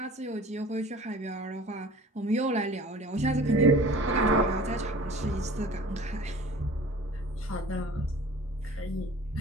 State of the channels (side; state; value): both; normal; correlation 0.45